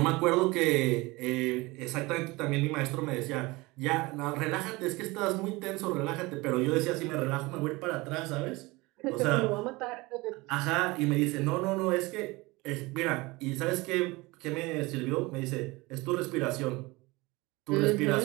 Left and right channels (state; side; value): quieter; left; 22.8 dB